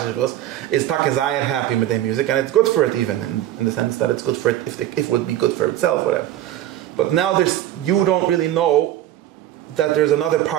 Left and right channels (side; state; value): left; quieter; 12.9 dB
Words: is takazayir happy with their music, and it's good for it, even in the sense that it's good for it if it would be good for itself, whatever. But now you don't really know that there's another